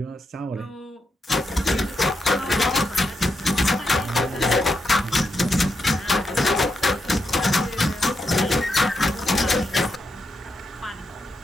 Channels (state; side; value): normal; both; correlation 0.84